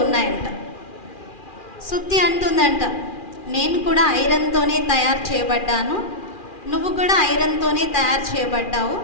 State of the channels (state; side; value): late; right; 2.4 ms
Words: ఉన్నాయంట. సుత్తి అంటుందంట, నేను కూడా ఐరన్తోనే తయారు చేయబడ్డాను, నువ్వు కూడా ఐరన్తోనే తయారు చేయబడ్డావు,